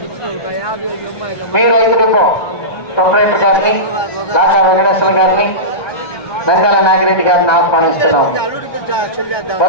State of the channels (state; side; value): late; right; 1.2 ms